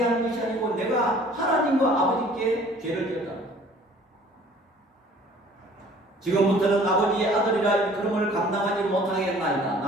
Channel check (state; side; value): normal; both; correlation 0.52